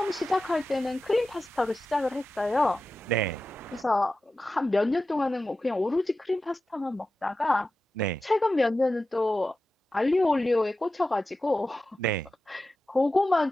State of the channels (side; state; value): both; normal; correlation 0.93